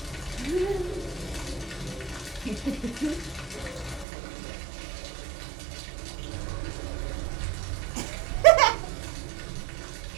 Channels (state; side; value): drops out; left; at 4.0 s